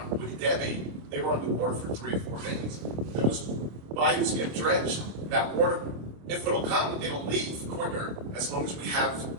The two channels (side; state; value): left; late; 26 ms